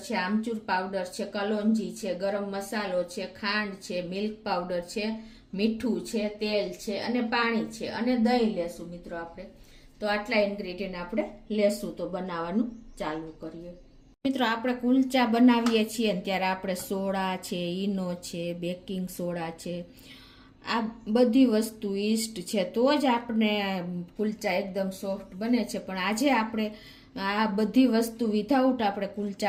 છે, આમચૂર પાવડર છે, કલોંજી છે, ગરમ મસાલો છે, ખાંડ છે, મિલ્ક પાવડર છે, મીઠું છે, તેલ છે અને પાણી છે અને દહીં લેશું મિત્રો આપણે। તો આટલા ઇન્ગ્રેડિયન્ટ આપણે લેશું। તો બનાવવાનું ચાલુ કરીએ। મિત્રો, આપણે કુલચા બનાવીએ છીએ ને ત્યારે આપણે સોડા છે, ઈનો છે, બેકિંગ સોડા છે, આ બધી વસ્તુ ઈસ્ટ છે તો જ આપણે કુલચા એકદમ સોફ્ટ બને છે। પણ આજે આપણે આ બધી વસ્તુ વિધાઉટ આપણે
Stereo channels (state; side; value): identical; both; correlation 1.00